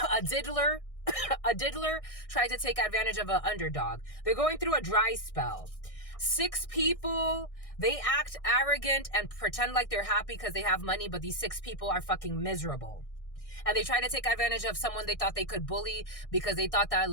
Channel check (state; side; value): late; right; 1.6 ms